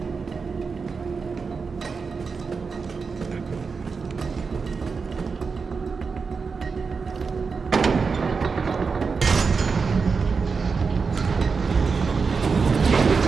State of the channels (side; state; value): left; quieter; 5.0 dB